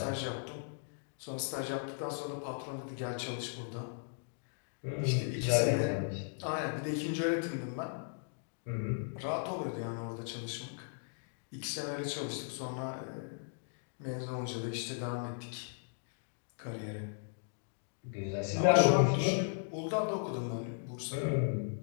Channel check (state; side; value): silent; right; digital silence